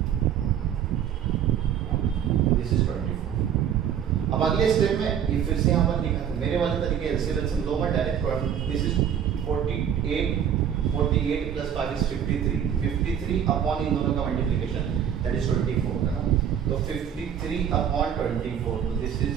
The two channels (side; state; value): left; quieter; 8.9 dB